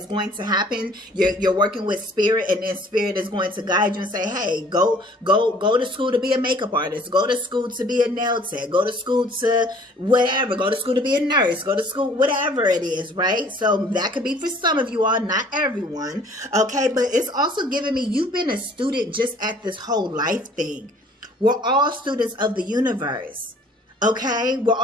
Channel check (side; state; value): both; normal; correlation 0.54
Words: going to happen. You're working with spirit, and then spirit is going to guide you and say, hey, go to school to be a makeup artist, go to school to be a nail tech, go to school to whatever, go to school to be a nurse, go to school, whatever it is, right? So that could be for some of you all, not everyone. Okay, but it's also giving me, you've been a student just at this whole life thing. We're all students of the universe. Okay, we're